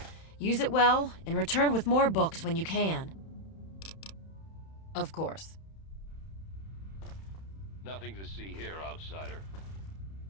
Use it well and return with more books when you can. Of course. Nothing to see here, outsider.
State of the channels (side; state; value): right; late; 31 ms